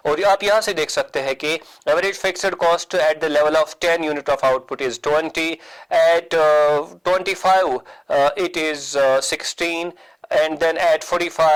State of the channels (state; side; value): identical; both; correlation 1.00